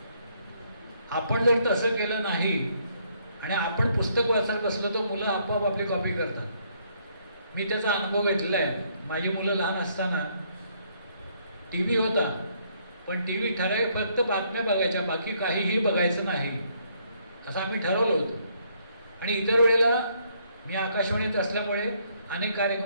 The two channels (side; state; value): both; inverted; correlation -0.69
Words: आपण जर तसं केलं नाही आणि आपण पुस्तक वाचत बसलो तर मुलं आपोआप आपली कॉपी करतात. मी त्याचा अनुभव घेतला आहे. माझी मुलं लहान असताना टी व्ही होता, पण टी व्ही ठराविक फक्त बातम्या बघायच्या, बाकी काहीही बघायचं नाही असं आम्ही ठरवलं होतं. आणि इतर वेळेला मी आकाशवाणीत असल्यामुळे अनेक